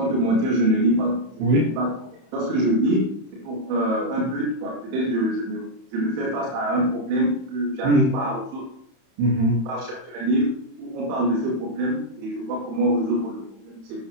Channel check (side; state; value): left; late; 31 ms